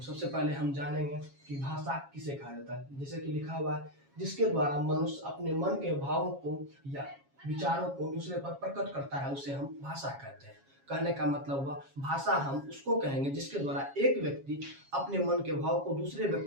सबसे पहले हम जानेंगे कि भाषा किसे कहा जाता है। जैसे कि लिखा हुआ है, जिसके द्वारा मनुष्य अपने मन के भावों को या विचारों को दूसरे पर प्रकट करता है, उसे हम भाषा कहते हैं। कहने का मतलब हुआ, भाषा हम उसको कहेंगे जिसके द्वारा एक व्यक्ति अपने मन के भाव को दूसरे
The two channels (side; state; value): left; late; 7.3 ms